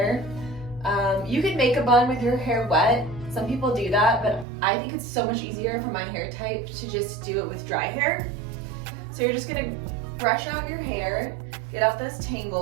You can make a bun with your hair wet. Some people do that, but I think it's so much easier for my hair type to just do it with dry hair. So you're just going to brush out your hair, get out those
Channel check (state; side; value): drops out; left; at 4.5 s